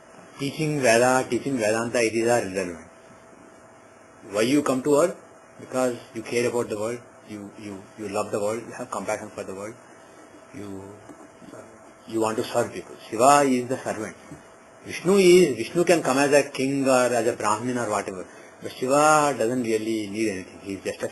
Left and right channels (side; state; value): both; identical; correlation 1.00